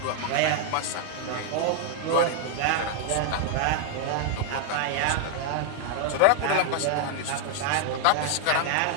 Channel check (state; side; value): different; both; correlation 0.00